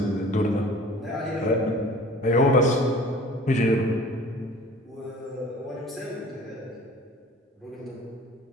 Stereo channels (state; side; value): normal; both; correlation 0.46